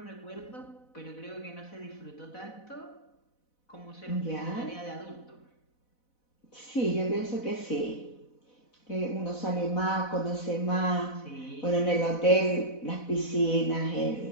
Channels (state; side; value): late; right; 4.0 ms